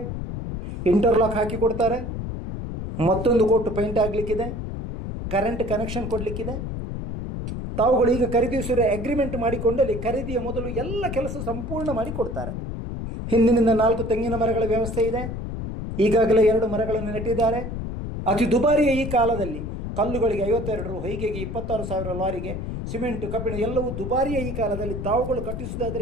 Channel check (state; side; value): noise; left; rumble, 6 dB below the sound